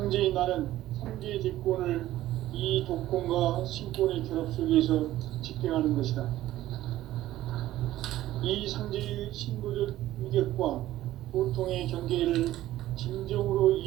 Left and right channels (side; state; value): left; quieter; 14.6 dB